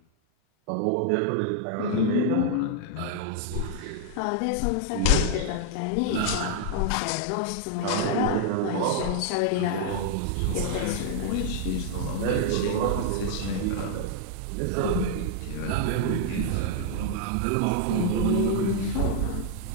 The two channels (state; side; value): different; both; correlation 0.00